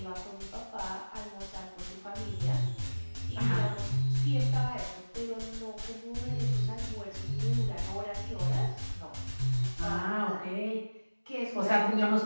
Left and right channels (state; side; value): inverted; both; correlation -1.00